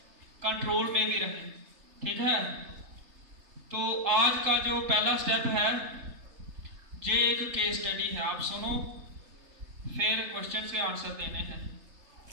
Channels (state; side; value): late; left; 3.3 ms